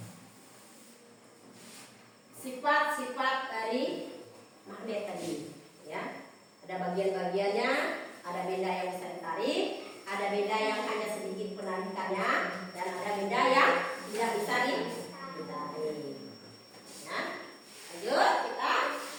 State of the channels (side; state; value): both; identical; correlation 1.00